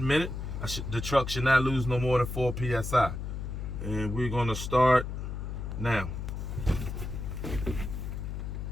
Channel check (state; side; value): noise; left; hum, 5 dB below the sound